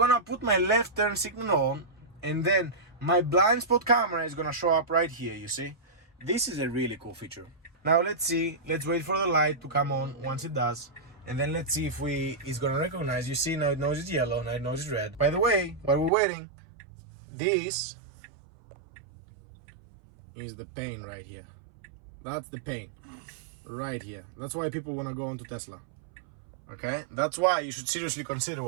put my left turn signal on and then my blind spot camera is gonna show up right here, you see? This is a really cool feature. Now let's see, let's wait for the light to come on once it does. And then let's see if it's gonna recognize. You see now it knows it's yellow, now it knows it's red. By the way, while we're waiting, this is the pain right here. That's the pain right here. That's why people wanna go onto Tesla. Okay? That's why you should seriously consider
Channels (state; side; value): drops out; left; at 16.1 s